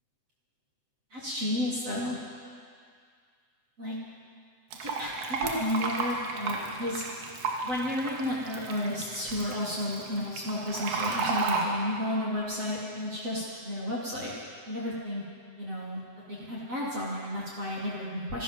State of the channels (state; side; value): late; left; 7.9 ms